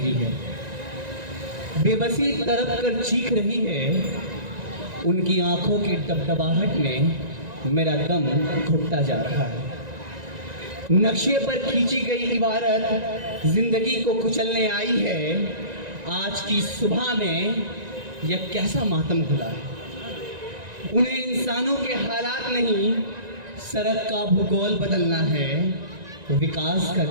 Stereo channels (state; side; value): late; left; 1.9 ms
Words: है, बेबसी तड़प कर चीख रही है। उनकी आंखों की डबडबाहट में मेरा दम घुटता जा रहा है। नक्शे पर खींची गई इबारत जिंदगी को कुचलने आई है। आज की सुबह में यह कैसा मातम खुला है। उन्हें इंसानों के हालात नहीं, सड़क का भूगोल बदलना है। विकास का